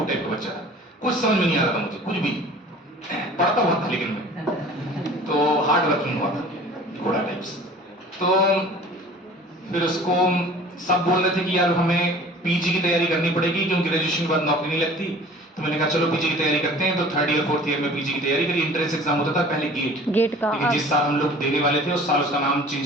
टाइप का बच्चा था, कुछ समझ में नहीं आ रहा था मुझे, कुछ भी। पढ़ता हुआ था लेकिन मैं तो हार्ड वर्किंग हुआ था, घोड़ा टाइप्स। तो फिर उसको सब बोल रहे थे कि यार हमें पीजी की तैयारी करनी पड़ेगी, क्योंकि ग्रेजुएशन के बाद नौकरी नहीं लगती। तो मैंने कहा चलो पीजी की तैयारी करते हैं। तो 3rd ईयर 4th ईयर में पीजी की तैयारी करी। एंट्रेंस एग्जाम होता था पहले गेट का, लेकिन जिस साल हम लोग देने वाले थे उस साल उसका नाम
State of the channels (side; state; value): both; normal; correlation 0.46